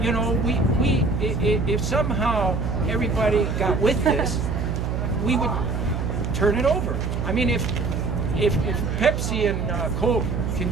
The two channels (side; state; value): right; noise; hum, 2 dB below the sound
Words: know, if somehow everybody got with this, we would turn it over. I mean, if Pepsi and Coke can